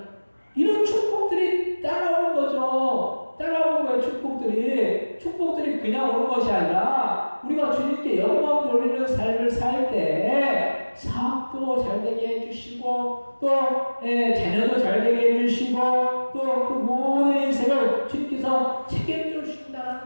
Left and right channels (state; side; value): inverted; both; correlation -1.00